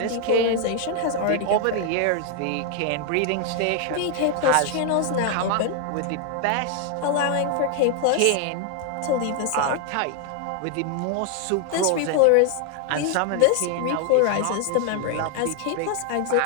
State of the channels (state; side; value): different; both; correlation 0.00